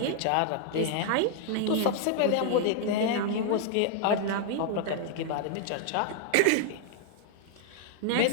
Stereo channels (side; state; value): both; different; correlation 0.00